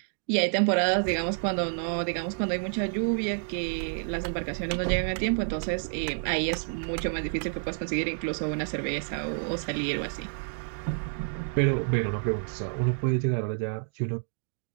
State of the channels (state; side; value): silent; left; digital silence